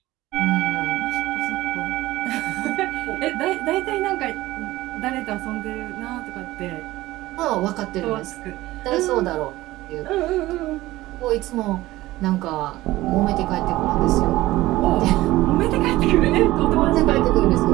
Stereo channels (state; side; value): quieter; left; 17.4 dB